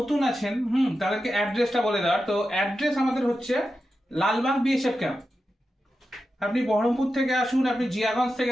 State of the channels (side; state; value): both; normal; correlation 0.90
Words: আছেন তাদেরকে অ্যাড্রেসটা বলে দেওয়ার। তো অ্যাড্রেস আমাদের হচ্ছে লালবাগ বিএসএফ ক্যাম্প। আপনি বহরমপুর থেকে আসুন, আপনি জিয়াগঞ্জ